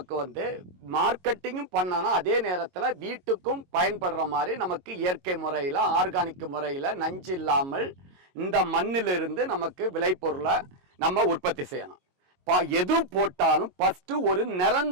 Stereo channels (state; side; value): late; left; 22 ms